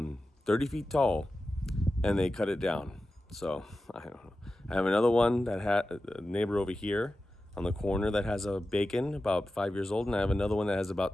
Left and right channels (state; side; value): normal; both; correlation 0.93